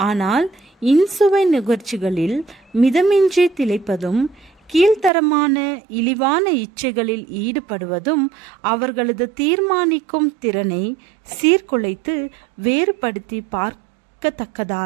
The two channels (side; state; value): left; drops out; at 5.1 s